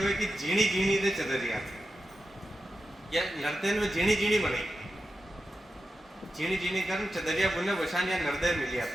कि जीणी जीणी दे चदरिया या नर्तन में जीणी जीणी बने, जीणी जीणी कर चदरिया बुने वशान या नर्दय मिली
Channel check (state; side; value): normal; both; correlation 0.90